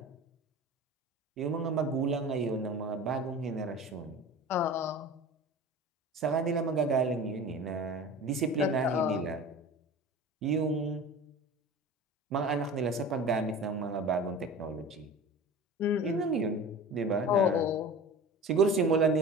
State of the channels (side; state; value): both; normal; correlation 0.36